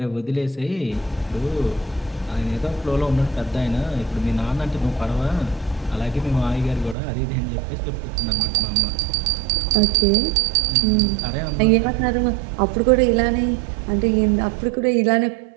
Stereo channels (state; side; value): drops out; left; at 7.0 s